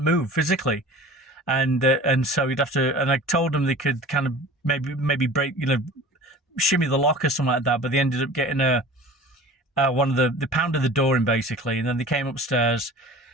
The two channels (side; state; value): both; normal; correlation 0.41